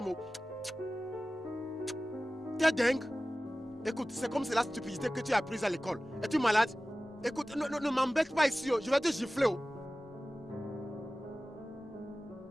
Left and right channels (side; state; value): both; normal; correlation 0.96